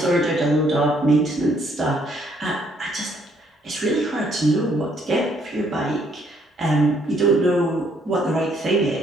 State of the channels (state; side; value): normal; both; correlation 0.68